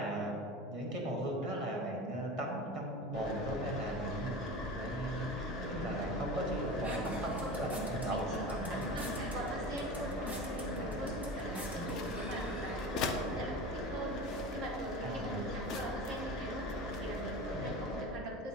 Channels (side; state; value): both; normal; correlation 0.32